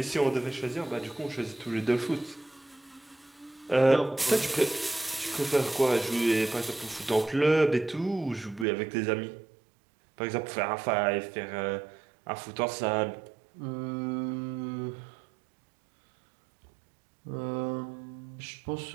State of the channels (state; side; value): drops out; left; at 8.7 s